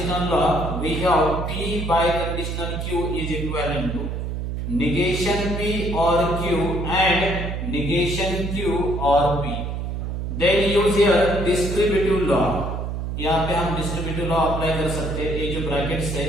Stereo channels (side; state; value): right; noise; hum, 4 dB below the sound